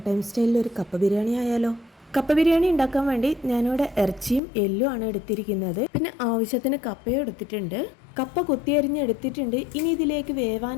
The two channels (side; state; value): right; drops out; at 4.4 s